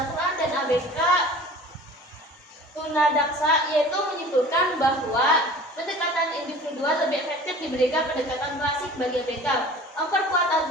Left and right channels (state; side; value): normal; both; correlation 0.43